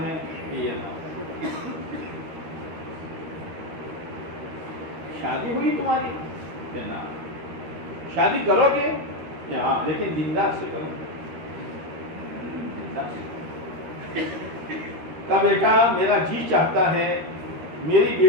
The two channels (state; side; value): late; left; 13 ms